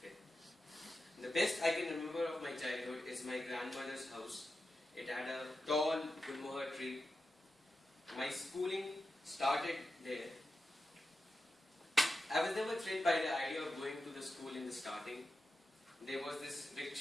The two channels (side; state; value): both; normal; correlation 0.91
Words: it. The best I can remember of my childhood is my grandmother's house. It had a tall gulmohar tree. My schooling started there. I was never thrilled by the idea of going to the school in the starting. There was this